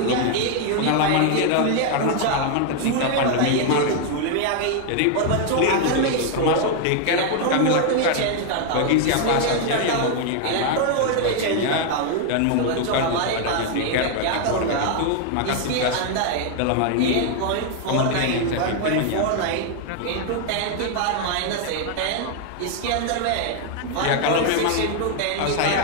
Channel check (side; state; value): both; different; correlation 0.00